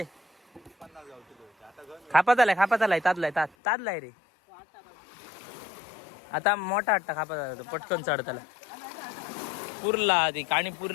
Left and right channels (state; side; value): drops out; right; at 3.5 s